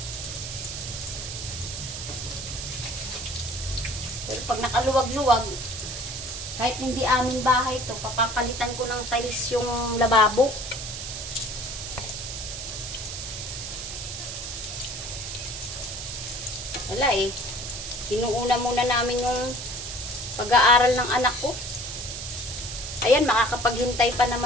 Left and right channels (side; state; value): right; noise; hiss, 7 dB below the sound